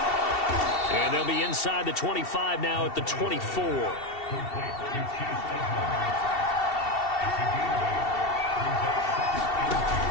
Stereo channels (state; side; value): late; right; 2.7 ms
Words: And they'll be inside the 25 now at the 24.